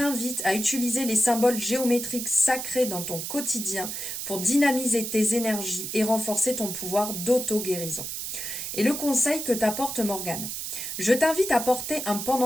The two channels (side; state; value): right; noise; hiss, 5 dB below the sound